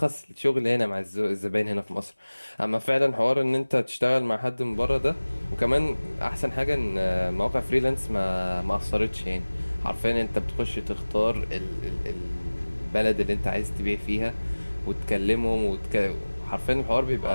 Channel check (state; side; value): inverted; both; correlation -1.00